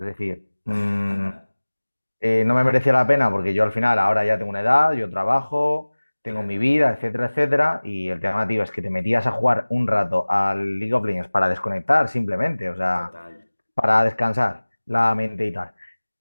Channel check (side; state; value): both; inverted; correlation -1.00